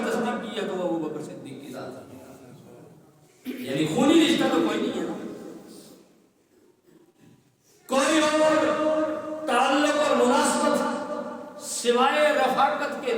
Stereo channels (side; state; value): both; identical; correlation 1.00